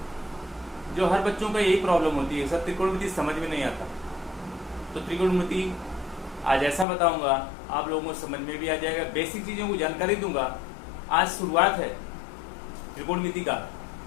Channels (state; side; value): drops out; right; at 6.9 s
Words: जो हर बच्चों का यही प्रॉब्लम होती है, सर त्रिकोणमिति समझ में नहीं आता। तो त्रिकोणमिति आज ऐसा बताऊंगा आप लोगों को समझ में भी आ जाएगा, बेसिक चीज़ों को जानकारी दूंगा। आज शुरुआत है त्रिकोणमिति का,